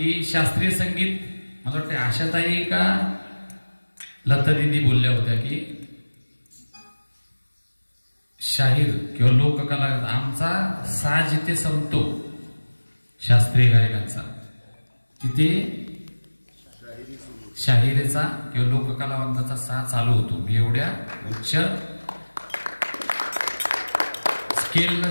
शास्त्रीय संगीत, मला वाटतं आशाताई का लता दिदी बोलल्या होत्या की शाहीर किंवा लोककला आमचा साज जिथे संपतो शास्त्रीय गायकांचा, तिथे शाहिरीचा किंवा लोककलावंताचा साज चालू होतो. मी एवढ्या उच्च स्केलला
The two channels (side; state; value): both; inverted; correlation -1.00